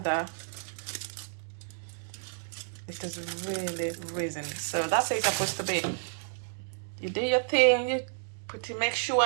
that. It has really risen. So that's how it's supposed to be. You do your thing, you make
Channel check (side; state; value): left; silent; digital silence